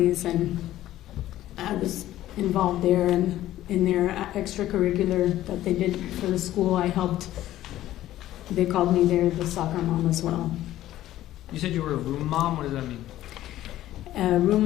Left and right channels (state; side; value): quieter; right; 13.9 dB